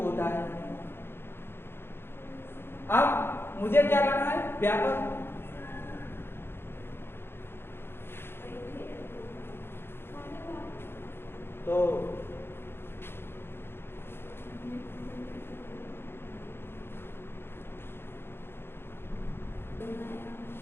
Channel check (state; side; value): late; right; 0.11 ms